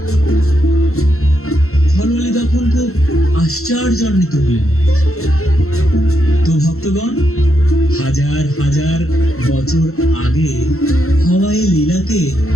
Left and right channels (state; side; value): late; right; 0.63 ms